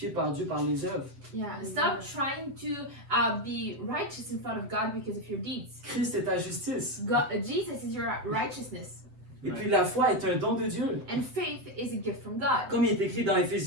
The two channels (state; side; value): late; left; 7.7 ms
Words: par Dieu par les œuvres. Yeah, stop trying to be righteous in front of God because of your deeds. Christ est ta justice. Jesus is your righteousness, Et puis la foi est un don de Dieu. and faith is a gift from God. Comme il est écrit dans